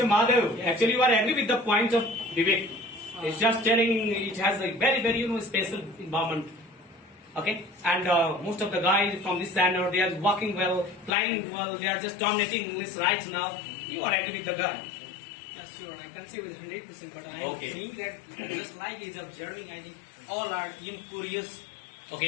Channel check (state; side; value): drops out; right; at 11.1 s